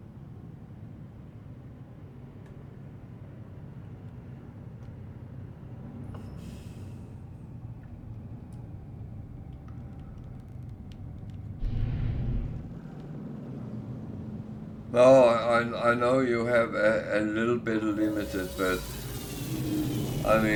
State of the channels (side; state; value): both; identical; correlation 1.00